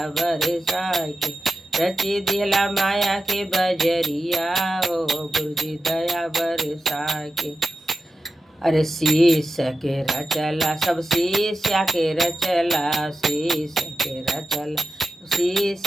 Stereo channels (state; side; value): normal; both; correlation 0.91